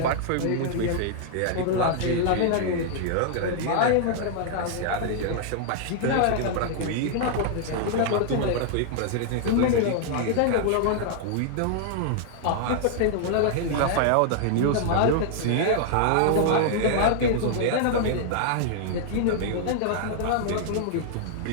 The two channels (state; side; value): different; both; correlation -0.01